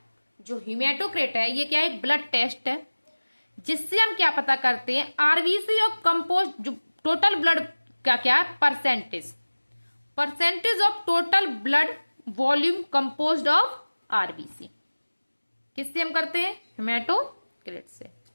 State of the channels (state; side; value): inverted; both; correlation -1.00